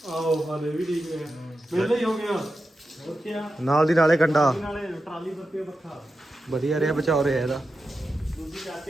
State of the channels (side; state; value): both; normal; correlation 0.90